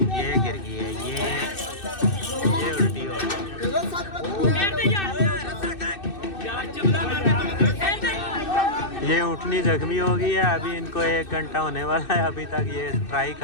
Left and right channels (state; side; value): late; right; 2.6 ms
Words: ये गिर गई है, ये उल्टी हो गई। ये ऊँटनी जख्मी हो गई है। अभी इनको 1 घंटा होने वाला है। अभी तक ये ट्राई